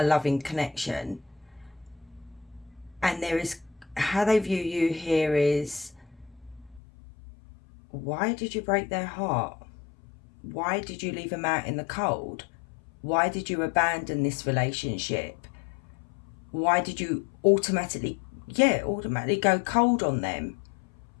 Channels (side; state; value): right; drops out; at 6.8 s